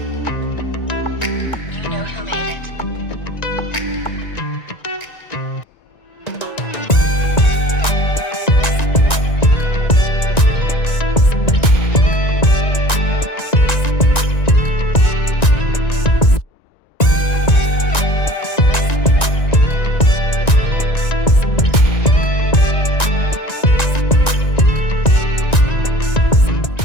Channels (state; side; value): late; right; 1.9 ms